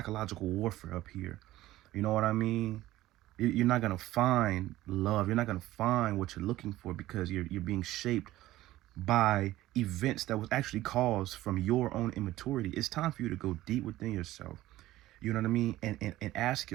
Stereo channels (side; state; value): left; quieter; 15.9 dB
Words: warfare up here. You know what I mean? You're not going to find love. You're not going to find what you're looking for, because you're being shaped by events that was actually caused from your own immaturity. It's time for you to go deep within yourself. You know what I mean? And ask